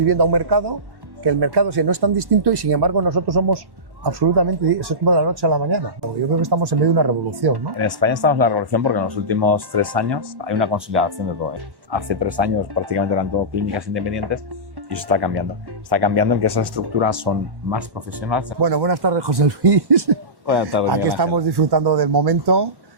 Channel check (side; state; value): left; late; 1.1 ms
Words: a un mercado que el mercado no es tan distinto y sin embargo nosotros somos absolutamente, eso es como de la noche a la mañana. Yo creo que estamos en medio de una revolución, ¿no? En España estamos en la revolución porque en los últimos 3 años hay una consolidación de todo. Hace 3 años prácticamente eran todo clínicas independientes y eso está cambiando. Está cambiando en que esas estructuras son más profesionales. Bueno, buenas tardes, José Luis. Buenas tardes. Aquí estamos disfrutando del momento.